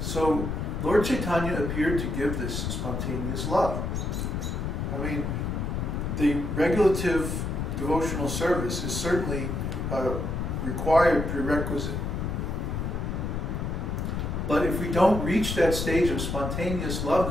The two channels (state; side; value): noise; left; rumble, 2 dB below the sound